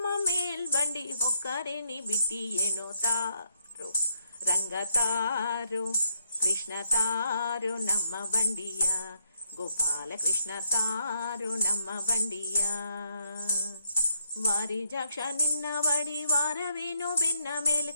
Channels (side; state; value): both; inverted; correlation -0.77